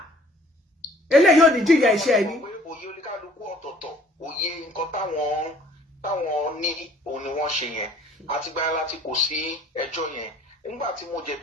eléyìí ò ní jìyà iṣẹ́ ẹni. Òye oníkálukú ọ̀tọ̀ọ̀tọ̀ òye nǹkan táwọn ní òun ni wọ́n ṣe yẹn àtìgbà láti kò sí ẹjọ́ yẹn nígbà tí mo jẹ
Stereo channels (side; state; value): both; normal; correlation 0.56